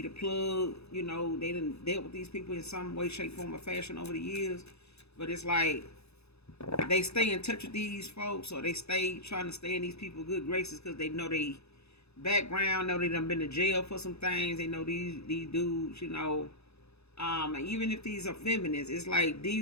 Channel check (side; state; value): right; late; 0.79 ms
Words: plug. They done dealt with these people in some way, shape, form, or fashion over the years. But it's like they stay in touch with these folks, or they stay trying to stay in these people's good graces because they know they background, know they done been to jail for some things. They know these dudes, even if these are feminists, it's like